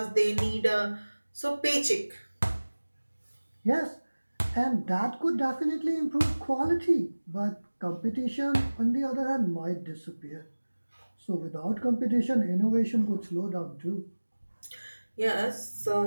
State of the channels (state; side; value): inverted; both; correlation -1.00